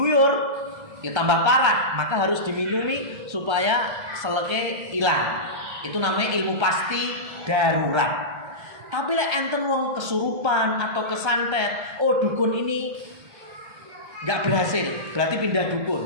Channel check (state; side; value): late; left; 1.3 ms